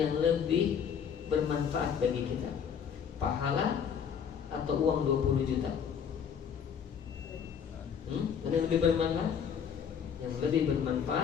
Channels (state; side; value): quieter; right; 7.5 dB